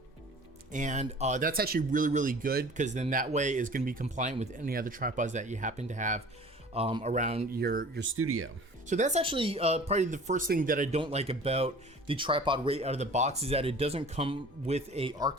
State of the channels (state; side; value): normal; both; correlation 0.45